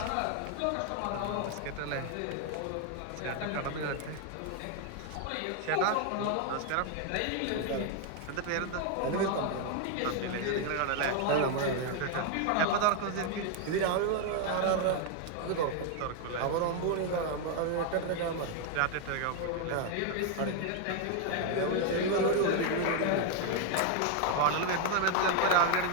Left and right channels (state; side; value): different; both; correlation 0.00